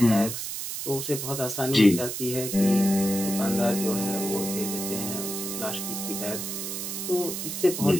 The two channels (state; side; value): noise; right; hiss, 5 dB below the sound